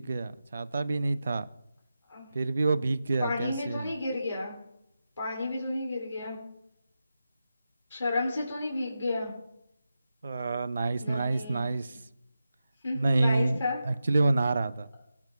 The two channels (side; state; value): both; inverted; correlation -0.90